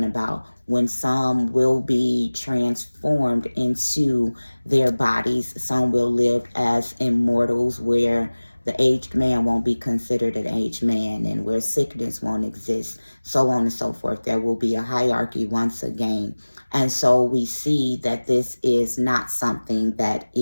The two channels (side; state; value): both; inverted; correlation -1.00